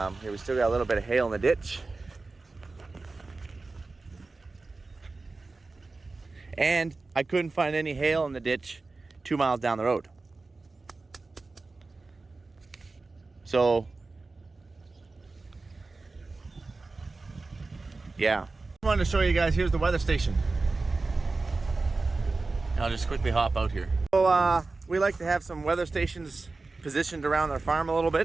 we still got a little bit of hail in the ditch. And I couldn't find any hail in the ditch 2 miles down the road. So, yeah. I wanted to show you guys, here's the weather station. I'll just quickly hop out here. So, we like to have some weather stations positioned around our farm a little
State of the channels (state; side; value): quieter; left; 3.6 dB